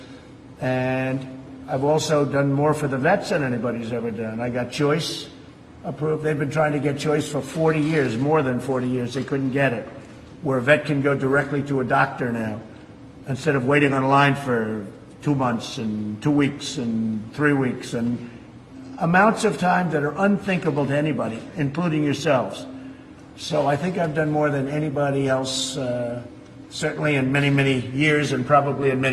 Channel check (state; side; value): identical; both; correlation 1.00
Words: And I've also done more for the vets than anybody's ever done. I got choice approved. They've been trying to get choice for 40 years, more than 40 years. They couldn't get it. Where a vet can go directly to a doctor now, instead of waiting on a line for 2 months and 2 weeks and 3 weeks, and amounts of time that are unthinkable to anybody, including yourselves. So I think I've done more than anybody else, certainly in many, many years and probably in